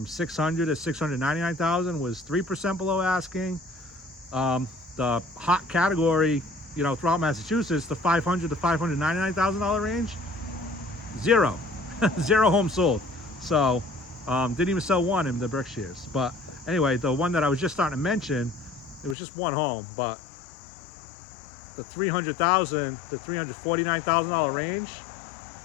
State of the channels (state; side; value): drops out; right; at 19.2 s